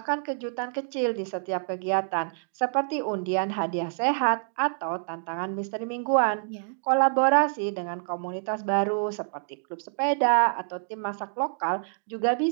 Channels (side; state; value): left; silent; digital silence